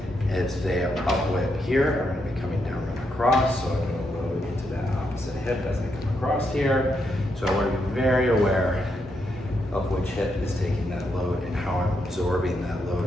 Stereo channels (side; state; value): both; normal; correlation 0.80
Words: as they are upward here. I'm going to be coming down and across, so I'm going to load into that opposite hip as I come across here. So I want to be very aware of which hip is taking that load and how I'm absorbing that